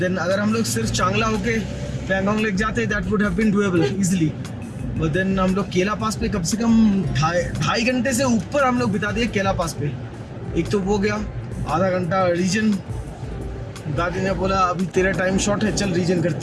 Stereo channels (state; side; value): identical; both; correlation 1.00